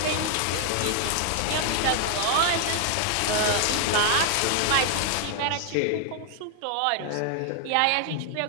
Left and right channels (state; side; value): different; both; correlation 0.00